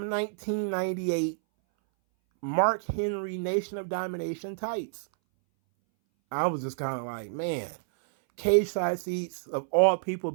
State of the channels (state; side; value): silent; left; 59 dB below the other